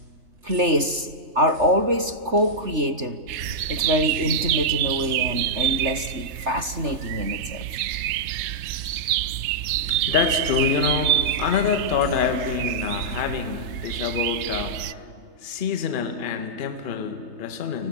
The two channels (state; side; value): late; left; 3.3 ms